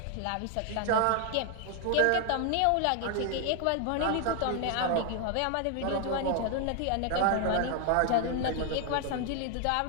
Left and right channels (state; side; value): different; both; correlation 0.00